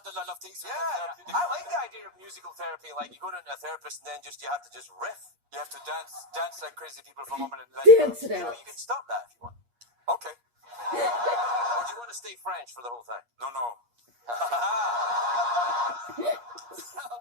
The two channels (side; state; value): left; late; 8.4 ms